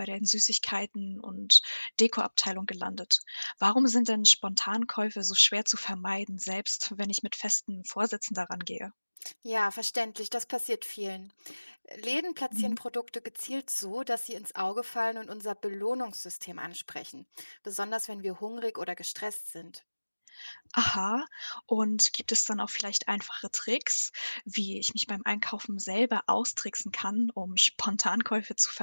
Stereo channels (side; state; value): both; inverted; correlation -1.00